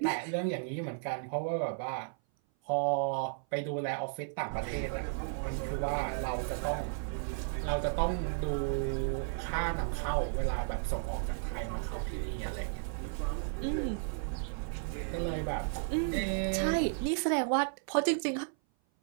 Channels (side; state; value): left; silent; 55 dB below the other